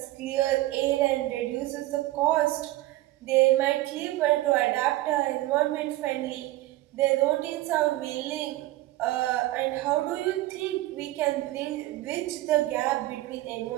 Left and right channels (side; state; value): left; quieter; 16.9 dB